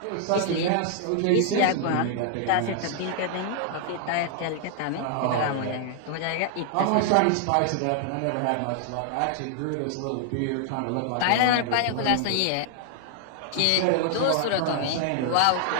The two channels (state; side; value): different; both; correlation 0.00